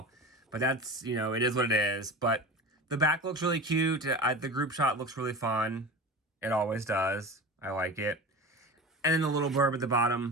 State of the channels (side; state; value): both; normal; correlation 0.31